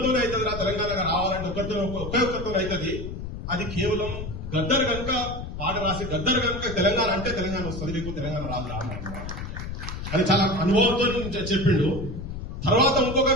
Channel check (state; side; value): noise; left; rumble, 7 dB below the sound